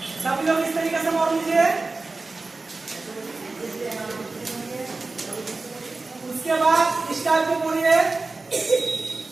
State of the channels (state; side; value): quieter; left; 3.6 dB